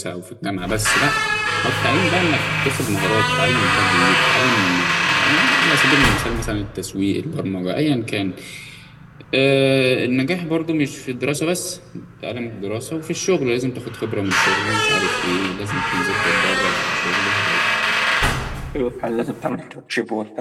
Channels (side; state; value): both; identical; correlation 1.00